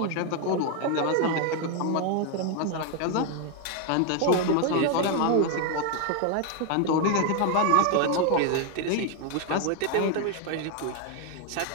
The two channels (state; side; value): different; both; correlation 0.01